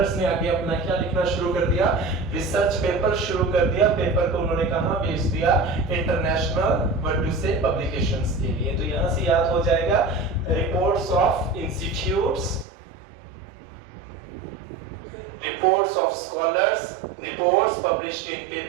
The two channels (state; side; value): drops out; left; at 12.7 s